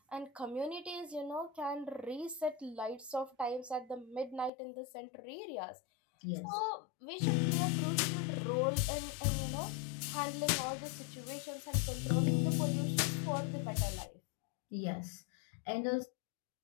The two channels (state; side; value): drops out; right; at 4.5 s